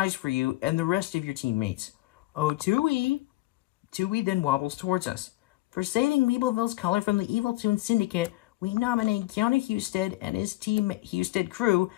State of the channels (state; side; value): quieter; right; 19.2 dB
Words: for you and the rest of your teammates. Oh, Tui! Tui then wobbles towards us. For saving Weebleville's color from the Evil Toon Syndicate, we nominate Keanu Husted and his Team Husted crew